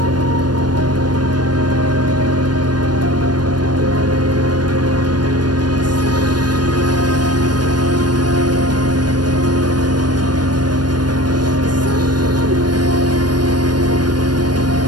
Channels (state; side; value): late; left; 0.70 ms